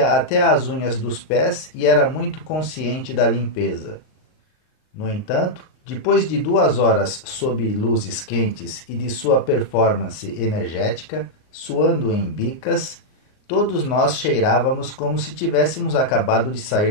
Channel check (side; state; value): right; late; 39 ms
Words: até as unhas dos pés e era muito consciente da limpeza. No entanto, depois de 2 horas sob luzes quentes e de sua performance energética, suando em bicas, todos nós cheirávamos como se tivéssemos acabado de